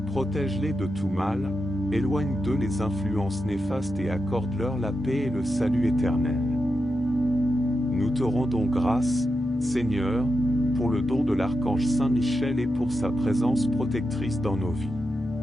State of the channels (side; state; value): both; normal; correlation 0.88